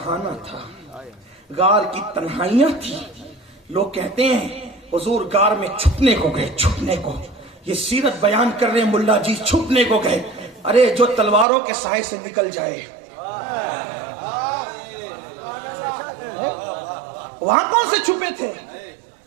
تھا، غار کی تنہائیاں تھی۔ لوگ کہتے ہیں حضور غار میں چھپنے کو گئے، چھپنے کو، یہ سیرت بیان کر رہے ہیں ملا جی، چھپنے کو گئے۔ ارے جو تلواروں کے سائے سے نکل جائے، وہاں کون سے چھپے تھے؟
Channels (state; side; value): drops out; left; at 11.5 s